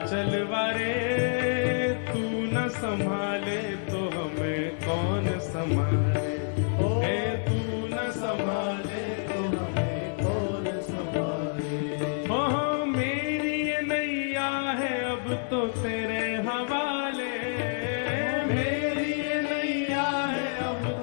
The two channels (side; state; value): right; silent; digital silence